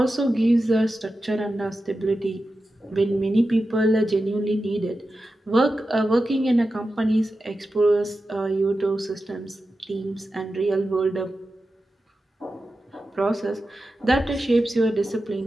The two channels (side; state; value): both; normal; correlation 0.92